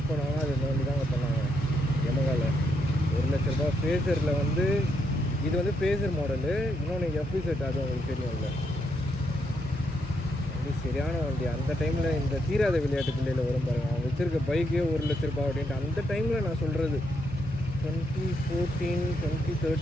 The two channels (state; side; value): normal; both; correlation 0.78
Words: பண்ணாங்கன்னா அது இந்த வண்டி தாங்க பண்ணாங்க யமகாவில். 1 லட்ச ரூபா. ஃபேஸரில் வந்து இது வந்து ஃபேஸர் மாடலு. இன்னொன்று எஃப்இ செட், அது உங்களுக்கு தெரியும்ல. வண்டி சரியான வண்டி. அந்த டைமில் இந்த தீராத விளையாட்டு பிள்ளையில் வரும் பாருங்கள், அவங்க வச்சுருக்க பைக்கே 1 லட்ச ரூபா அப்படின்ட்டு. அந்த டைமில் நான் சொல்கிறது 2014